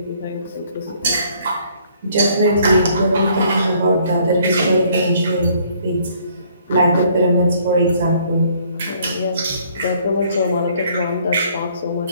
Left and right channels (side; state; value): both; inverted; correlation -0.62